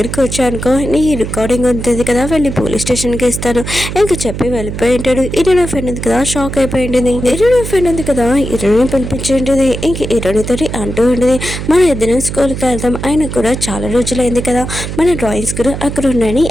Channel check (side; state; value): right; noise; hum, 6 dB below the sound